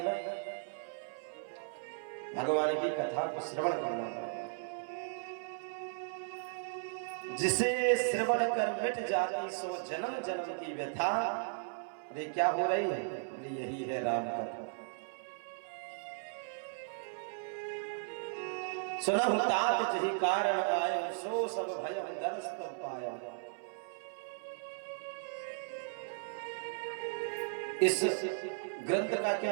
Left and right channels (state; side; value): silent; left; 54 dB below the other